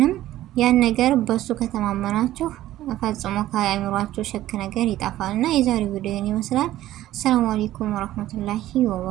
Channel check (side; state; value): left; quieter; 14.3 dB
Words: ያን ነገር በሱ ከተማመናችሁ ፈጽሞ ከአእምሯችሁ ሸክ ነገር ይጠፋል። እና የዛሬው ቪዲዮ ይመስላል። ሰላም አለይኩም ወራህመቱላሂ